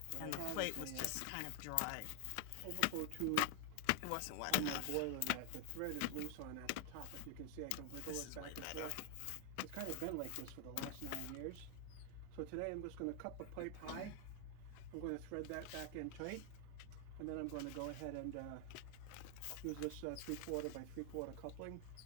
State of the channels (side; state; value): both; different; correlation 0.00